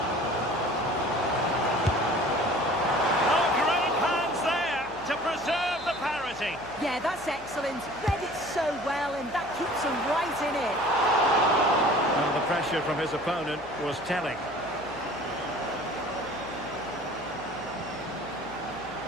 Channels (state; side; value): noise; left; hum, 21 dB below the sound